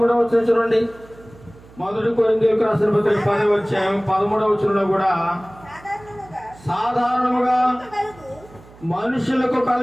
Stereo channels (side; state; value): right; noise; hum, 23 dB below the sound